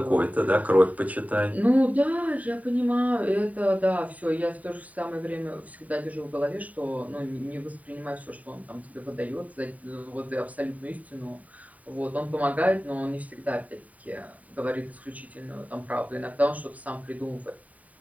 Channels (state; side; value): late; left; 0.071 ms